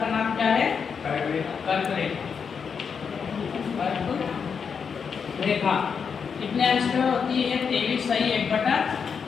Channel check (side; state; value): right; quieter; 6.3 dB